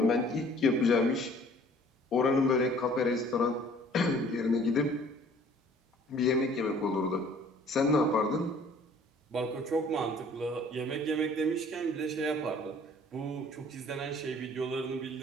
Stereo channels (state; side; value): normal; both; correlation 0.54